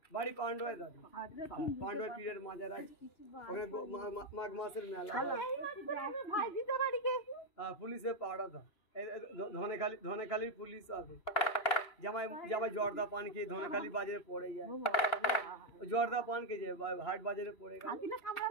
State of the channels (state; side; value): late; right; 3.0 ms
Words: বাড়ি পান্ডয় দাদি, পান্ডয় পীরের মাজার আছে ওখানে, মাঘ মাসের মেলা। পুলিশে পাড়া দাও, ধনেখালির পুলিশ আছে। জামাই জর্দা পান খেয়ে ধনেখালি বাজারে পড়ে যায়। জর্দা পান খেয়ে যায়, হাট বাজারে পড়ে গেল।